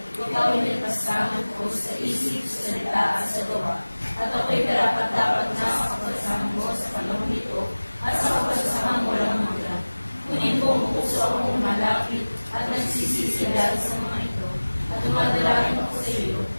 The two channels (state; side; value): inverted; both; correlation -1.00